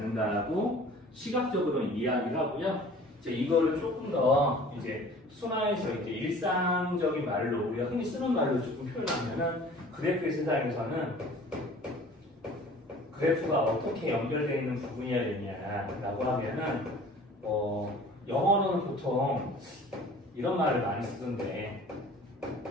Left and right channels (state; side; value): normal; both; correlation 0.47